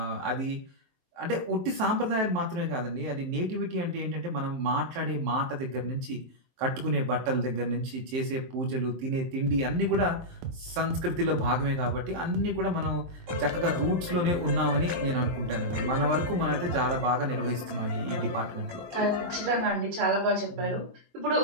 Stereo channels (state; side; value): late; left; 23 ms